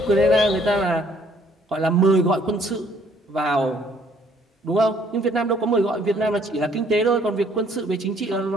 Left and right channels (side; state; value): both; normal; correlation 0.63